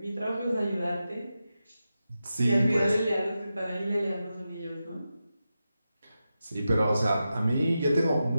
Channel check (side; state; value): both; inverted; correlation -0.90